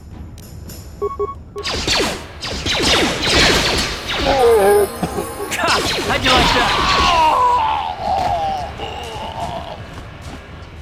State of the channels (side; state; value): both; identical; correlation 1.00